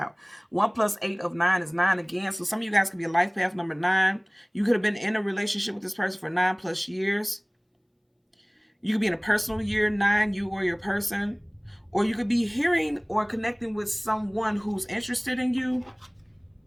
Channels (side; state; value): both; identical; correlation 1.00